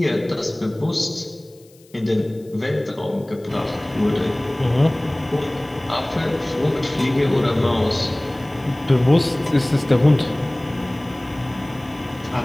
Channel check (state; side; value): noise; left; hiss, 29 dB below the sound